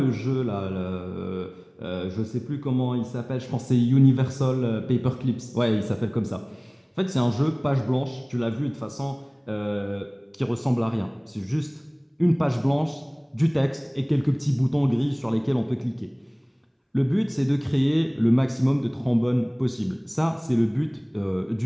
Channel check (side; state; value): both; identical; correlation 1.00